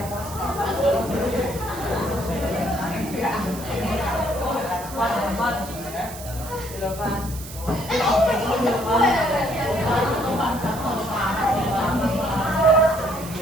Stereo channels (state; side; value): noise; right; hiss, 13 dB below the sound